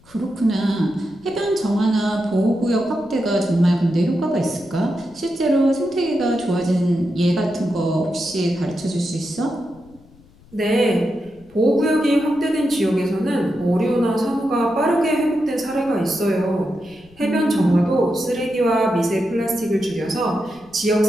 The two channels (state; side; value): noise; left; rumble, 27 dB below the sound